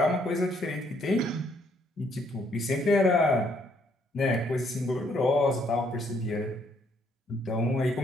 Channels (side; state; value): both; normal; correlation 0.69